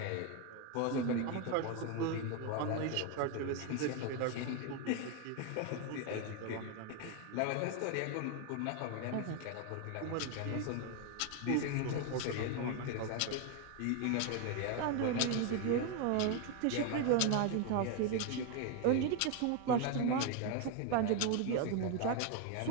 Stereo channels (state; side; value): different; both; correlation 0.01